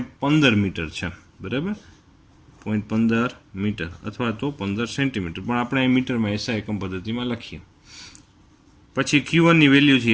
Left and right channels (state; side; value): identical; both; correlation 1.00